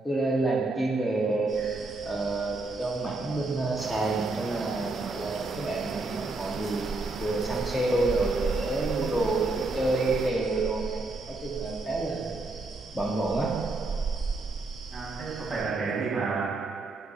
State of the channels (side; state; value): left; quieter; 3.1 dB